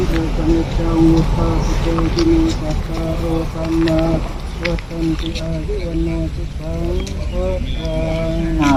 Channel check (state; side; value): identical; both; correlation 1.00